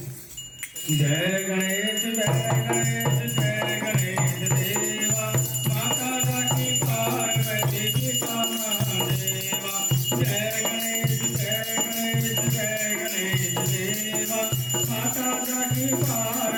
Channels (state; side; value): identical; both; correlation 1.00